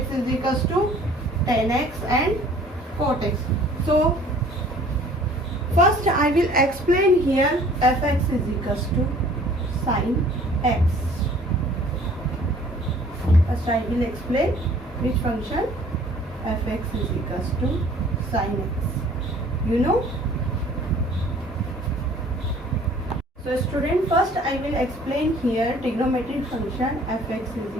is equals to tan x and cot x. So first I will explain here fx is equals to sin x. First I will explain which function fx is equals to sin x. You know? So student, first I will explain here trigonometric function fx is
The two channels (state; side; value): normal; both; correlation 0.53